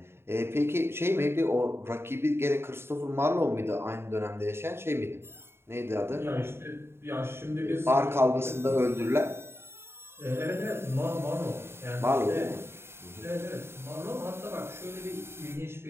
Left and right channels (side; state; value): left; late; 0.12 ms